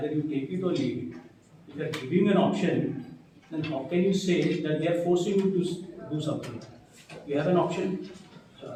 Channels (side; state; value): both; identical; correlation 1.00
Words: you take it or leave it. If they are giving an option, then how can you say that they are forcing you to do something? You have an option. So